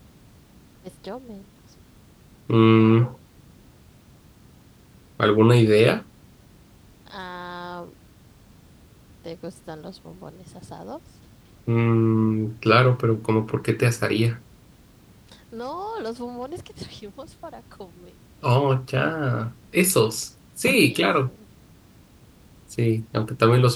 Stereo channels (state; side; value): identical; both; correlation 1.00